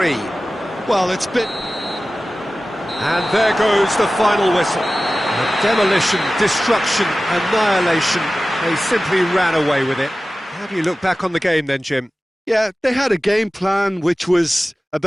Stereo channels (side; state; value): both; normal; correlation 0.96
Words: Well, it's been... And there goes the final whistle. Demolition, destruction, annihilation. They simply ran away with it. How do you look back on the game then, Jim? Yeah, they had a game plan which was